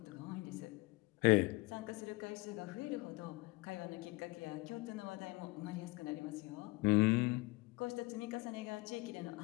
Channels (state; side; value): quieter; right; 23.3 dB